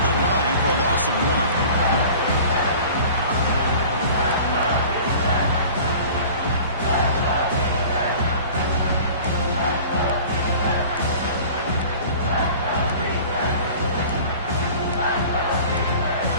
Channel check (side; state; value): both; inverted; correlation -0.43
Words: the line for a loss of 1.